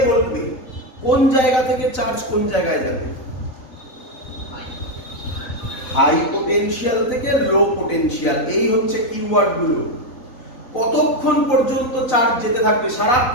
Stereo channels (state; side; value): late; right; 4.0 ms